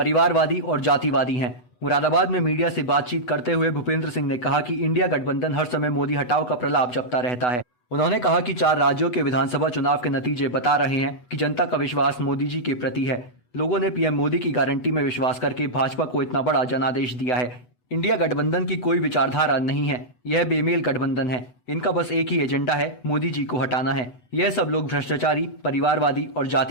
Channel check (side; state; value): right; late; 8.0 ms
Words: और जातिवादी हैं। मुरादाबाद में मीडिया से बातचीत करते हुए भूपेंद्र सिंह ने कहा कि इंडिया गठबंधन हर समय मोदी हटाओ का प्रलाप जपता रहता है। उन्होंने कहा कि 4 राज्यों के विधानसभा चुनाव के नतीजे बता रहे हैं कि जनता का विश्वास मोदी जी के प्रति है। लोगों ने पीएम मोदी की गारंटी में विश्वास करके भाजपा को इतना बड़ा जनादेश दिया है। इंडिया गठबंधन की कोई विचारधारा नहीं है, यह बेमेल गठबंधन है। इनका बस एक ही एजेंडा है, मोदी जी को हटाना है। यह सब लोग भ्रष्टाचारी, परिवारवादी और